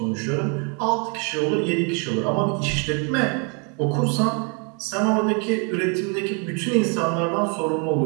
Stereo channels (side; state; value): left; quieter; 35.8 dB